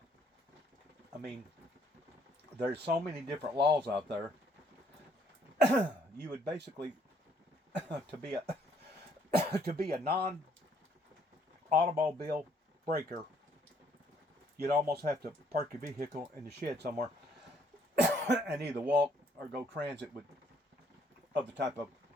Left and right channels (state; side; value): normal; both; correlation 0.66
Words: I mean, there's so many different laws out there. You would basically to be a non-automobile breaker, you'd almost have to park your vehicle in the shed somewhere and either walk or go transit of the type of